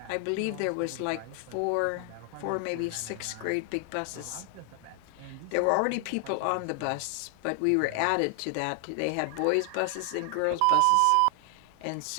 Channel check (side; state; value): both; different; correlation 0.00